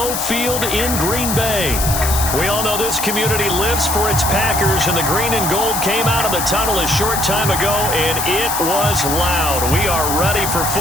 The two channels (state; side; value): noise; left; hiss, 3 dB below the sound